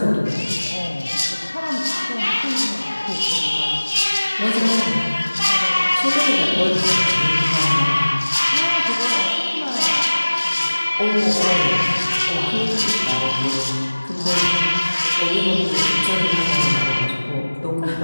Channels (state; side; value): inverted; both; correlation -1.00